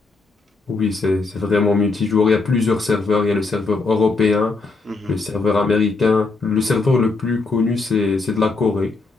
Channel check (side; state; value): right; quieter; 3.8 dB